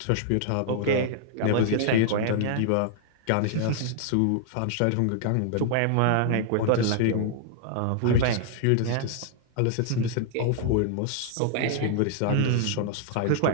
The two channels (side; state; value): both; different; correlation 0.00